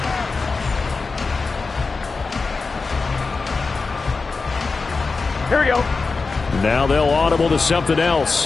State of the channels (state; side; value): quieter; right; 4.2 dB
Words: Here we go. Now they'll audible to something